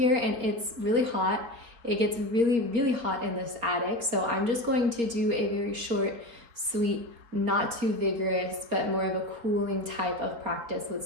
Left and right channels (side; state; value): left; late; 4.5 ms